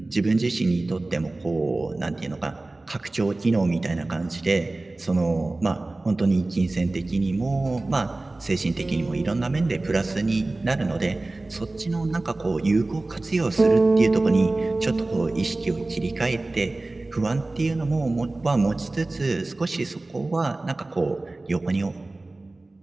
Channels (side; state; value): left; quieter; 3.0 dB